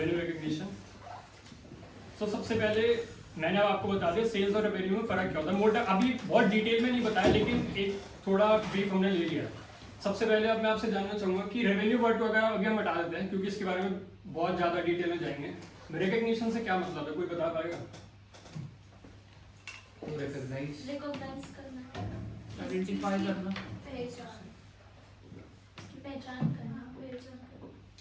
रिकग्निशन। तो सबसे पहले मैंने अब आपको बता दिया सेल्स और रेवेन्यू में फर्क क्या होता है, मोटा अभी बहुत डिटेल में नहीं बताया लेकिन एक थोड़ा ब्रीफ हमने ले लिया। सबसे पहले अब मैं आपसे जानना चाहूंगा कि रेवेन्यू वर्ड वगैरह अभी हम हटा देते हैं क्योंकि इसके बारे में बहुत ज़्यादा डिटेल में जाएंगे। रिकग्निशन से क्या मतलब है, कोई बता पाएगा? रिकॉग्नाइज करना, आइडेंटिफाई करना, पहचान करना।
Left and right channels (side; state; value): both; identical; correlation 1.00